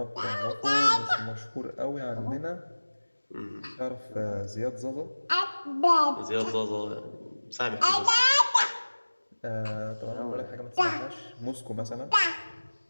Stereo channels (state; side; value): inverted; both; correlation -1.00